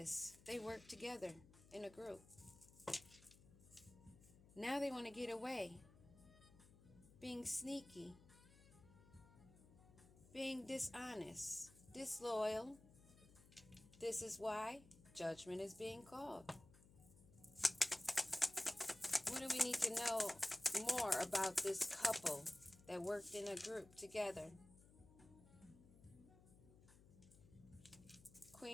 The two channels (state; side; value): noise; left; hum, 22 dB below the sound